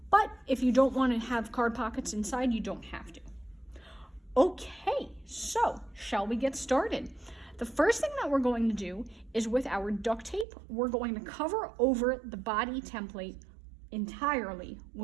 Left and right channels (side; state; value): left; drops out; at 10.5 s